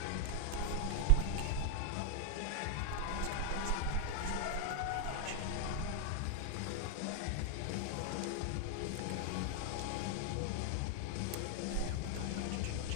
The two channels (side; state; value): both; different; correlation 0.00